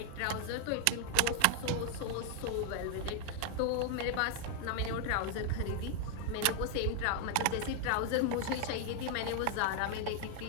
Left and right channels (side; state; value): both; different; correlation 0.00